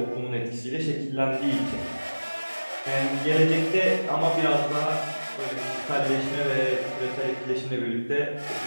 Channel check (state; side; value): inverted; both; correlation -1.00